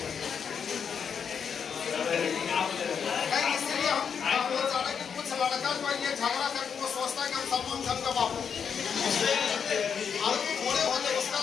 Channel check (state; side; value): quieter; right; 7.0 dB